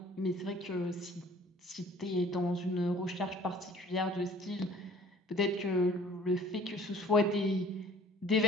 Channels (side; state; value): both; normal; correlation 0.52